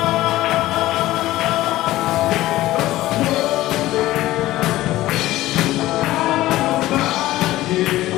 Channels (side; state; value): right; quieter; 16.2 dB